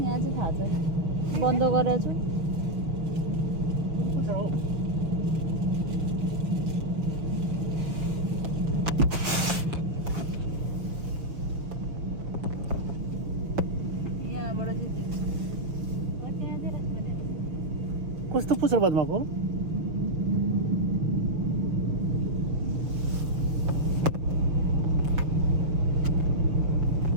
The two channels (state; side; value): late; left; 6.5 ms